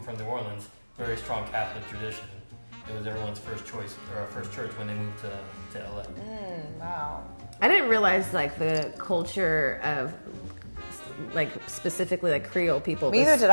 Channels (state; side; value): inverted; both; correlation -1.00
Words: from New Orleans, very strong Catholic tradition. It was everyone's first choice or first church when they moved to LA. Wow. I didn't realize like the culture of like specifically like Creole people. Neither did